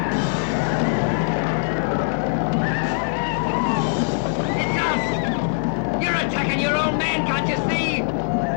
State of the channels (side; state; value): right; silent; digital silence